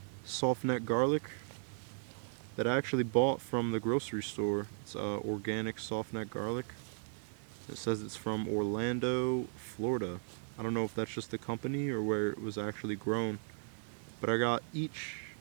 Softneck garlic that I actually bought from the grocery store. It's organic Softneck garlic. It says it's from Orlando, Florida. I don't know if that's just the company or where it was actually grown, but I got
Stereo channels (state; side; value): silent; left; 53 dB below the other